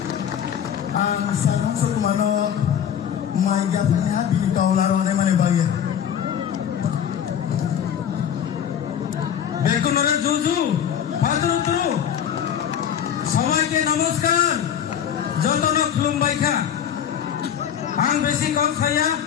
সবাইকে নমস্কার যতন খুলুমবাইখা আং বেশি কম খাইয়া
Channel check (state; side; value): quieter; right; 9.0 dB